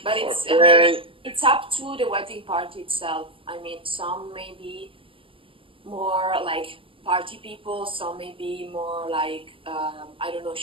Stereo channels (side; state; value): left; late; 0.26 ms